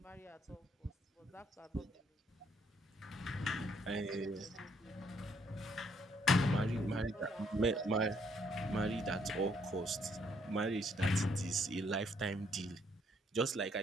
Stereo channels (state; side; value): normal; both; correlation 0.69